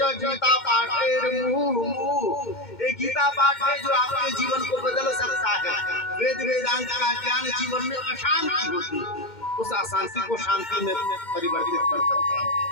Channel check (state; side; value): late; right; 2.1 ms